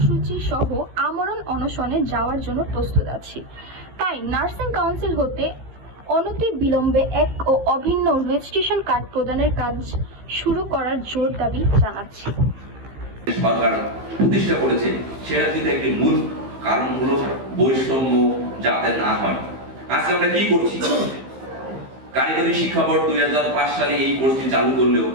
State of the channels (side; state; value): left; late; 15 ms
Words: সহ আমরণ অনশনে যাওয়ার জন্য প্রস্তুত আছি। তাই নার্সিং কাউন্সিল হতে অনতি বিলম্বে এক ও অভিন্ন রেজিস্ট্রেশন কার্ড প্রদানের কাজ শুরু করার জোর দাবি জানাচ্ছি। সরকার প্রতিষ্ঠা করেছে সেটা কিন্তু একটি মূল কারণ হলো বৈষম্য যাতে না হয়। আজকে আমরা কি করছি? কারিগরি শিক্ষা বোর্ড 2005 সালে এই কোর্সটি চালু করলেও